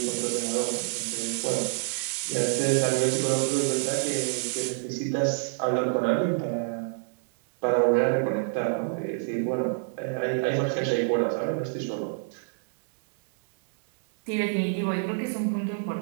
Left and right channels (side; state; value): left; silent; digital silence